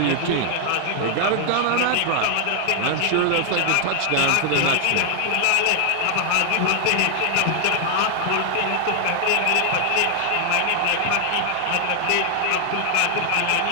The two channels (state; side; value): different; both; correlation 0.00